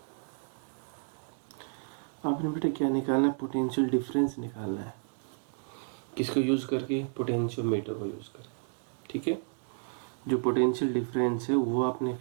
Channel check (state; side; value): silent; left; digital silence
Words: आपने बेटा क्या निकालना है? पोटेंशियल डिफरेंस निकालना है। किसको यूज करके? पोटेंशियोमीटर को यूज करके। ठीक है, जो पोटेंशियल डिफरेंस है वो आपने